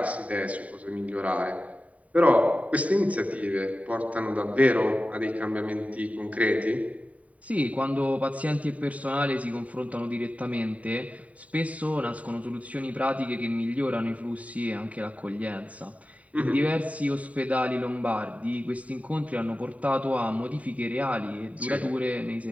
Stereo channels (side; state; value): left; late; 0.068 ms